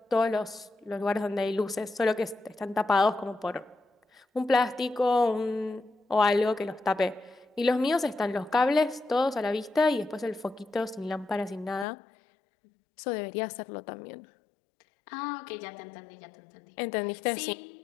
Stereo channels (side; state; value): right; drops out; at 11.9 s